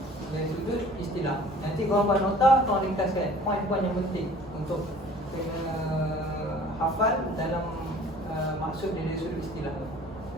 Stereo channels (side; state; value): both; normal; correlation 0.49